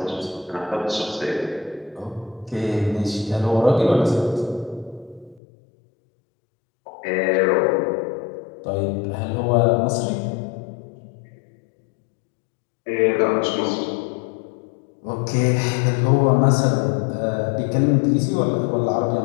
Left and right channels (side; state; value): right; drops out; at 5.4 s